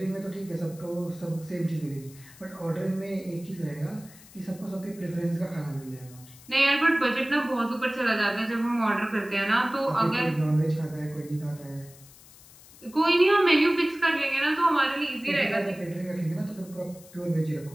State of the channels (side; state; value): left; noise; hiss, 22 dB below the sound